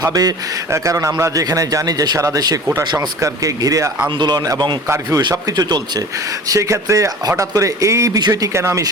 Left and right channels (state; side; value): normal; both; correlation 0.40